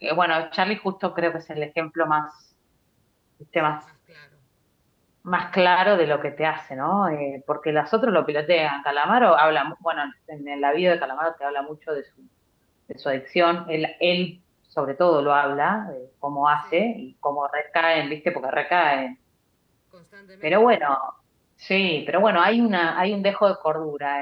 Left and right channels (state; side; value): identical; both; correlation 1.00